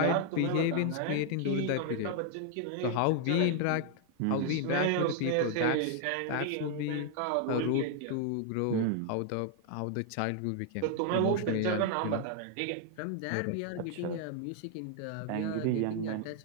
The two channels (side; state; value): both; different; correlation 0.00